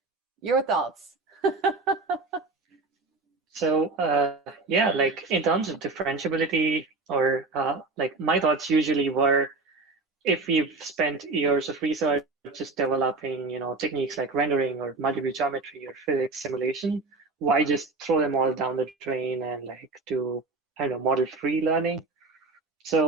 your thoughts. So yeah, like in terms of differentiability, or like my thoughts usually were, if we've spent years of research just developing, techniques like rendering or multi-view geometry or physics simulation, why just throw them all down the drain and like do, I don't know, model-free learning?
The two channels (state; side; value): quieter; left; 3.6 dB